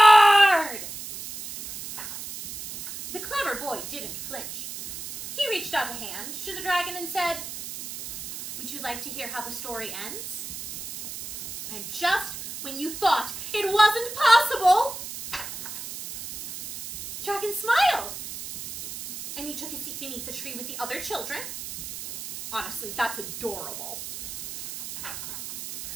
The clever boy didn't flinch. He reached out a hand to the dragon and said, would you like to hear how the story ends? And just when you thought it wasn't possible, Dragon smiled. And he took a seat beneath the tree with the other children. Honestly, that's adorable.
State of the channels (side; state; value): right; noise; hiss, 9 dB below the sound